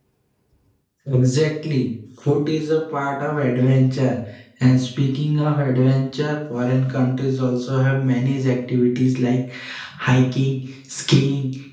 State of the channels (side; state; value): both; identical; correlation 1.00